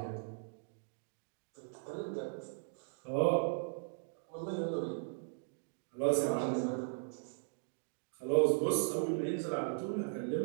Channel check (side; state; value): left; silent; digital silence